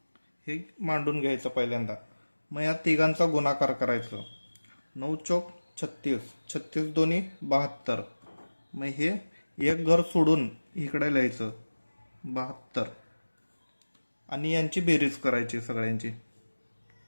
हे मांडून घ्यायचं पहिल्यांदा। मग या तिघांचा गुणाकार करायचं। 9 चौक 36, 36 दोन्ही 72। मग हे एक घर सोडून इकडे लिहायचं 72 आणि यांची बेरीज करायची सगळ्यांची।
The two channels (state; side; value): inverted; both; correlation -1.00